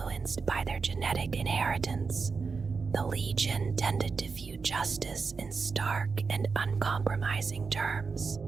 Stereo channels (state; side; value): quieter; left; 4.9 dB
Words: by their genetic inheritance, the Legion tended to view justice in stark and uncompromising terms.